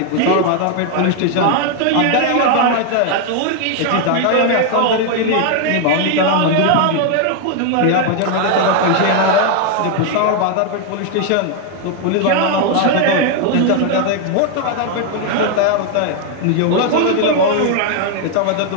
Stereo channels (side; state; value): both; different; correlation 0.01